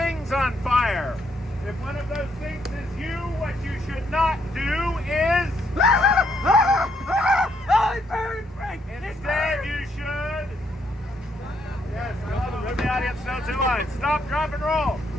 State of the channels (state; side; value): normal; both; correlation 0.73